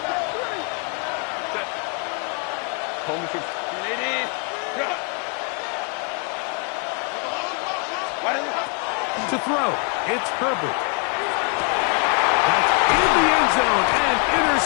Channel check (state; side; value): quieter; right; 36.4 dB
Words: To throw, it's Herbert. That's in the end zone and